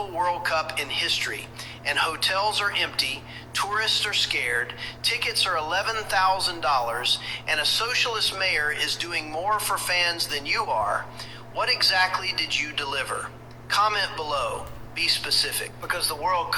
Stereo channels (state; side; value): identical; both; correlation 1.00